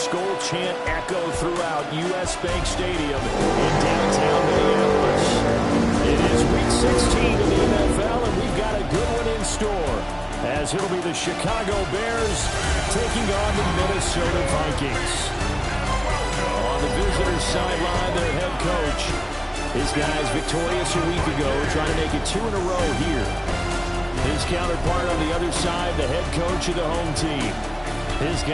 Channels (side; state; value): both; identical; correlation 1.00